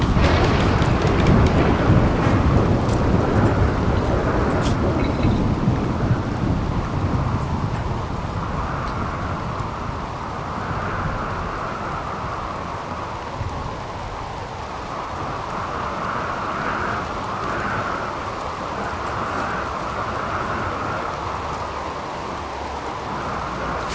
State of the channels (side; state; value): both; identical; correlation 1.00